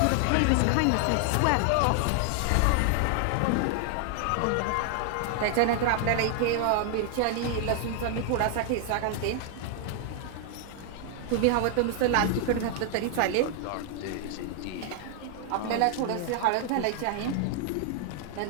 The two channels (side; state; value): both; different; correlation 0.00